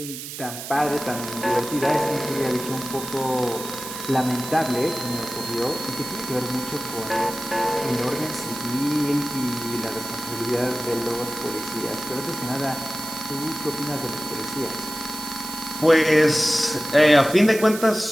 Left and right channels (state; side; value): noise; right; hiss, 9 dB below the sound